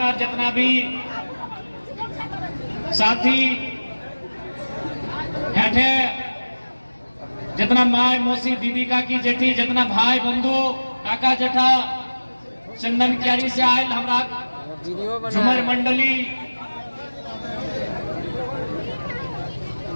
जितना भी साथी हेठे जितना माय मौसी दीदी का की जेठी जितना भाई बंधु काका जेठा चंदन क्यारी से आयल हमारा झुमर मंडली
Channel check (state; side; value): inverted; both; correlation -1.00